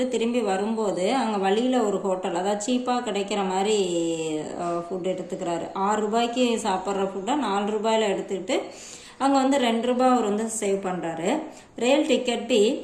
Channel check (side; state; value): both; identical; correlation 1.00